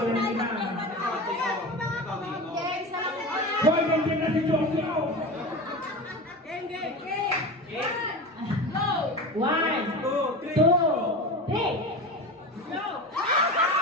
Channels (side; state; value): both; normal; correlation 0.27